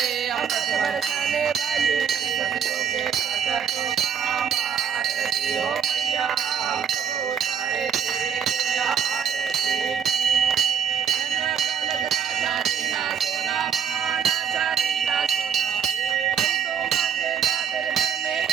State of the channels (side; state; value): left; quieter; 7.8 dB